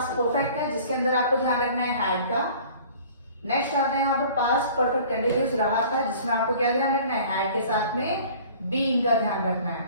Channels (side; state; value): both; inverted; correlation -0.48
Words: परफेक्ट का, जिसके अंदर आपको ध्यान रखना है, हैड का। नेक्स्ट आता है यहाँ पर पास्ट परफेक्ट कंटिन्यूस, रहा था, जिसमें आपको क्या ध्यान रखना है, हैड के साथ में बीइंग का ध्यान रखना है।